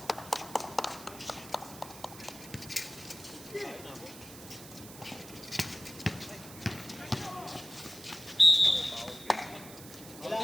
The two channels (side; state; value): right; noise; hiss, 15 dB below the sound